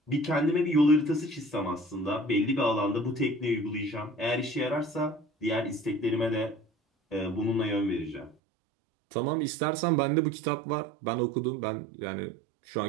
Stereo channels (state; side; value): drops out; left; at 8.3 s